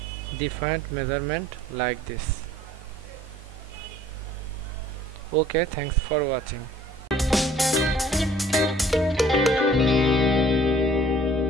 different measurement like this. Okay, thanks for watching.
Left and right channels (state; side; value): normal; both; correlation 0.54